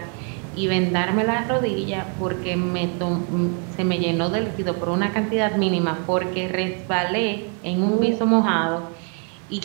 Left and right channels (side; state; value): left; quieter; 38.2 dB